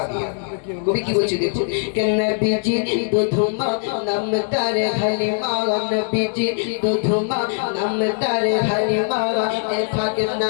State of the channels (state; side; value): silent; right; digital silence